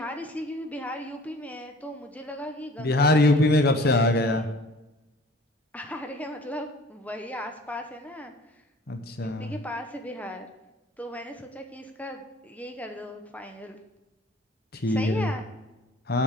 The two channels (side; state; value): both; normal; correlation 0.49